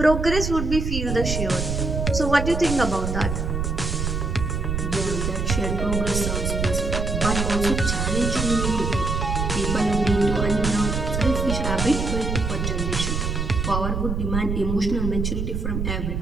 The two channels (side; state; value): right; noise; rumble, 1 dB below the sound